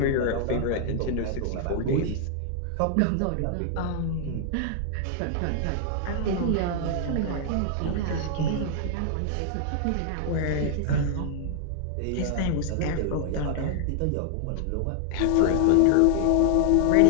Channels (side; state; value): both; different; correlation 0.00